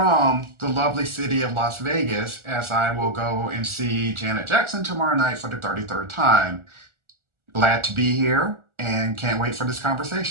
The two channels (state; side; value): late; left; 1.4 ms